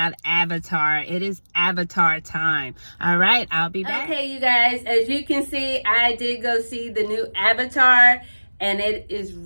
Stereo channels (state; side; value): inverted; both; correlation -1.00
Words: Avatar. It is Avatar time. All right, I'll be back. Okay, you guys, as you can see, I did go see the new Avatar, and it is